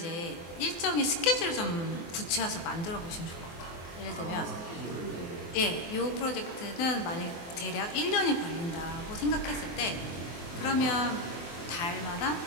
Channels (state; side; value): late; right; 24 ms